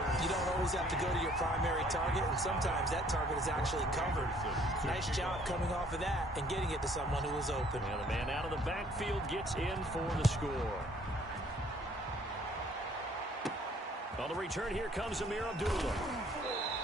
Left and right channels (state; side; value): normal; both; correlation 0.60